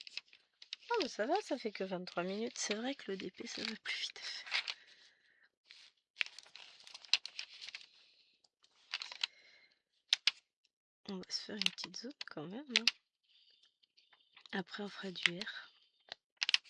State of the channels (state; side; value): identical; both; correlation 1.00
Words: Oh mais ça va, ça fait que 23 minutes, c'est vrai que le DP ça va plus vite à faire. On va se faire une petite zone quand même. Hein. Après on fera du R.